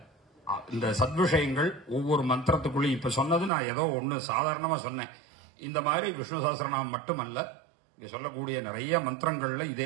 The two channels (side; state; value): left; drops out; at 3.5 s